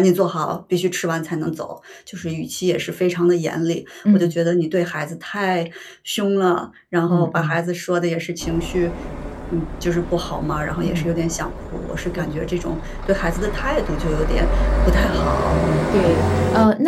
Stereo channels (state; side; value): identical; both; correlation 1.00